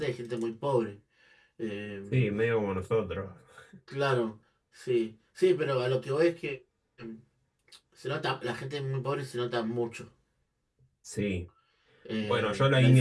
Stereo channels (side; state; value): both; identical; correlation 1.00